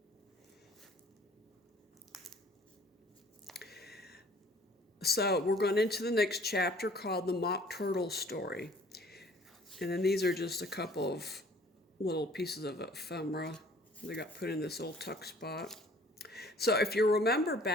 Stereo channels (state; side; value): normal; both; correlation 0.54